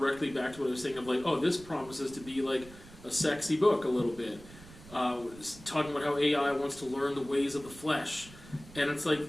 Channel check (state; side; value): noise; right; rumble, 19 dB below the sound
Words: back to what I was saying of this promises to be like a sexy book a little bit. Talking about how AI wants to learn the ways of the flesh. And it's like,